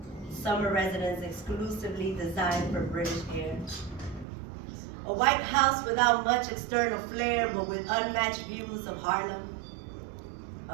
summer residence exclusively designed for British air. A white house without much external flair, but with unmatched views of Harlem,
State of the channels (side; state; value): left; drops out; at 4.2 s